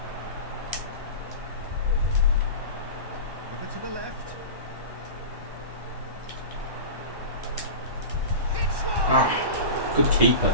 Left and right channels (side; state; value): left; late; 1.1 ms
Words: Over to the left. Hits one! Good keeper.